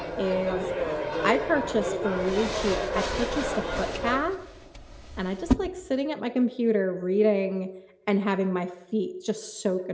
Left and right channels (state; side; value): identical; both; correlation 1.00